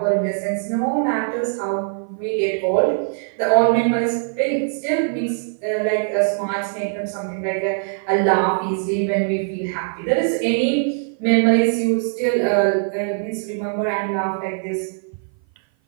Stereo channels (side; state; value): left; silent; 56 dB below the other